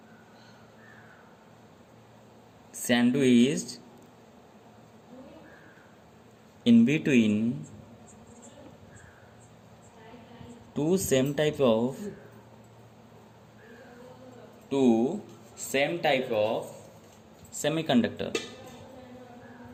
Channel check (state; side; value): identical; both; correlation 1.00